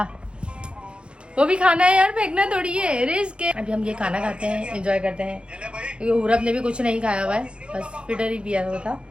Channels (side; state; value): left; late; 0.056 ms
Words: वो भी खाना है यार, फेंकना थोड़ी है, रिस्क है। अभी हम ये खाना खाते हैं, एंजॉय करते हैं, क्योंकि पूरब ने भी कुछ नहीं खाया हुआ है, बस फिटर ही पिया हुआ था।